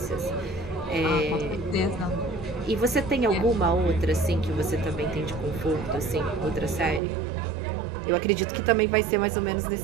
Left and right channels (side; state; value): left; drops out; at 7.0 s